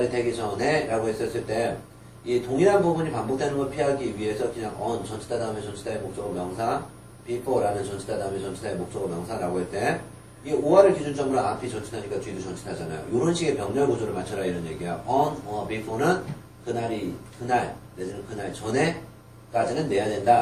되기 전에 라고 했었을 때 이 동일한 부분이 반복되는 걸 피하기 위해서 그냥 on 전치사 다음에 전치사의 목적어 명사 before라는 전치사 다음에 전치사의 목적어 명사라고 할 때 이 5화를 기준점으로 앞이 전치사니까 뒤도 전치사잖아요. 이런 식의 병렬 구조를 맞춰라 이런 얘기야. on or before는 그날 내지는 그날 전에까지는 내야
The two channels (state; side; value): identical; both; correlation 1.00